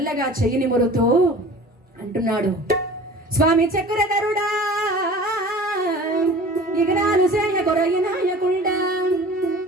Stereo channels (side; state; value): both; normal; correlation 0.42